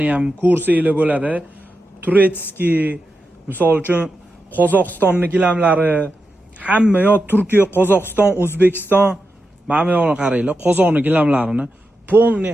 ham ko'rsanglar bo'ladi. Turetskiy, misol uchun Qozog'istonning gilamlari, hamma yo Turkiya, Qozog'iston, O'zbekiston, mana bu yoqni qaranglar, Qozog'ning gilamlarini polni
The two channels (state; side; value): normal; both; correlation 0.89